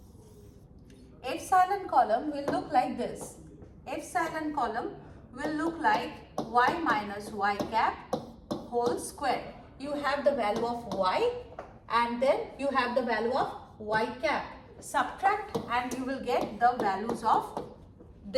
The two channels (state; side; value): identical; both; correlation 1.00